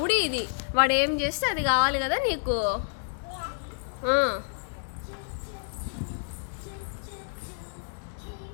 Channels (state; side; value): silent; right; digital silence